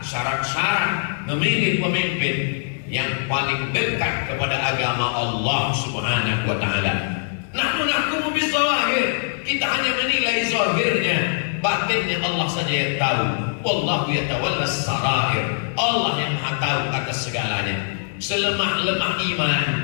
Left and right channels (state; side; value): silent; right; digital silence